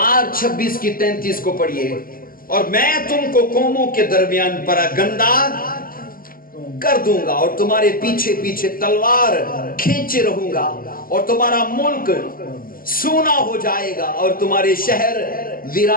26 کی 33 کو پڑھیے. اور میں تم کو قوموں کے درمیان پراگندہ کر دوں گا اور تمہارے پیچھے پیچھے تلوار کھینچے رہوں گا, اور تمہارا ملک سونا ہو جائے گا اور تمہارے شہر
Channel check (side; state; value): right; late; 0.42 ms